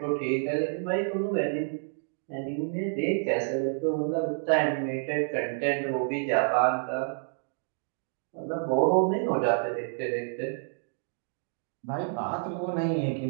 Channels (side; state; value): left; silent; digital silence